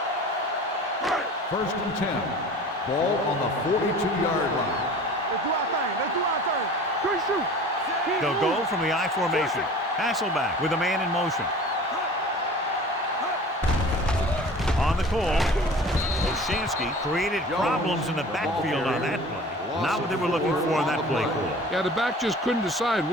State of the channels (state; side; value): normal; both; correlation 0.42